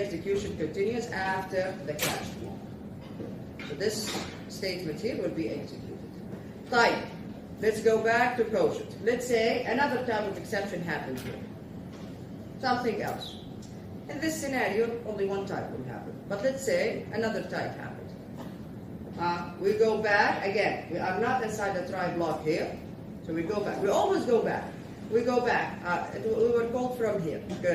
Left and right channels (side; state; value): both; identical; correlation 1.00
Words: continues after the catch block. So this statement here will be executed. Type. Let's go back to quotient. Let's say another type of exception happened here. Something else. In this scenario, only one type will happen. But let's say another type happened. We go back again. We are not inside the try block here, so we go back. We always go back. We go back. We were called from here.